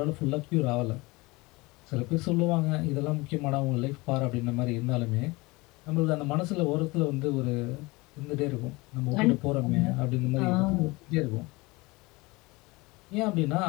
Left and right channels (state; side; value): quieter; right; 23.5 dB